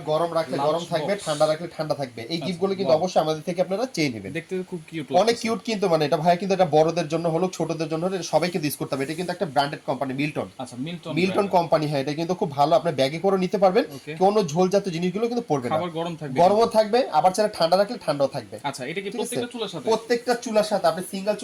গরম রাখলে গরম থাকবে, ঠান্ডা রাখলে ঠান্ডা থাকবে। এই গিফটগুলো কিন্তু অবশ্যই আমাদের থেকে আপনারা চেয়ে নেবেন। দেখতে খুব কিউট, অনেক কিউট কিন্তু, মানে এটা ভাই কিন্তু এটা বড়দের জন্য হলো, ছোটদের জন্য হলো, সবাইকে ইউজ করতে হবে। এটা কিন্তু একটা ব্র্যান্ডেড কোম্পানি, মিল্টন। আচ্ছা, মিল্টন কোম্পানি। হ্যাঁ, এটা কিন্তু খুব ভালো, আপনি ব্যাগে করে নিতে পারবেন, কোনো ঝোলজাত জিনিসগুলো কিন্তু পড়বে না, খাবার গরম থাকবে, গরমও থাকবে, আবার চাইলে ঠান্ডা রাখলে ঠান্ডাও থাকবে। আচ্ছা, এটা কি প্রত্যেকটা চুলার সাথে? প্রত্যেকটা চুলার সাথে, আপনি সিঙ্গেল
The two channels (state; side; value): identical; both; correlation 1.00